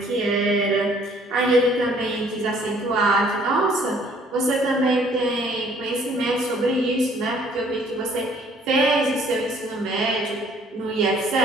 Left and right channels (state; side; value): normal; both; correlation 0.59